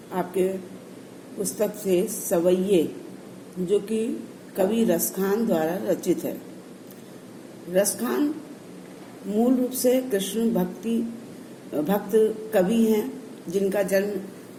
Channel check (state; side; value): identical; both; correlation 1.00